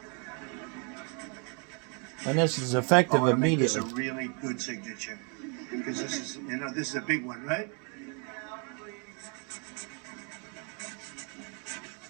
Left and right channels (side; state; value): left; quieter; 37.0 dB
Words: And this is effective immediately. This is a really good signature because this is, you know, this is a big one, right?